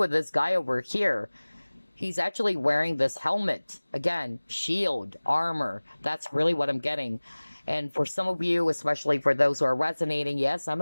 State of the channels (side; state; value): both; inverted; correlation -1.00